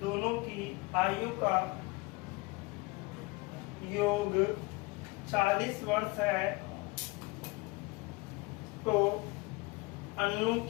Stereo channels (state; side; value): quieter; right; 25.2 dB